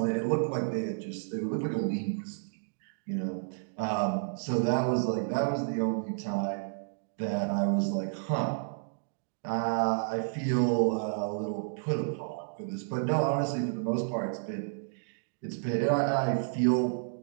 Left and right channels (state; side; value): silent; left; digital silence